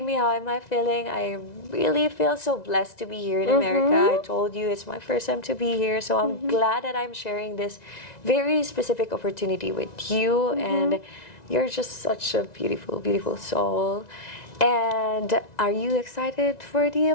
me how am I feeling. I really feel so blessed to be here in America. I told you it's my first time to be here, so I'm glad that I'm sharing this very specific opportunity with you, and you're just such a beautiful, beautiful soul. And are you excited for the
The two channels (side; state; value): right; late; 1.9 ms